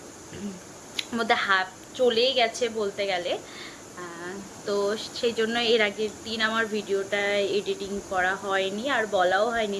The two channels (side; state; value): both; identical; correlation 1.00